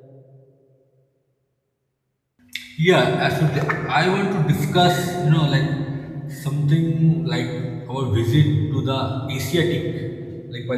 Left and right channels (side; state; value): both; identical; correlation 1.00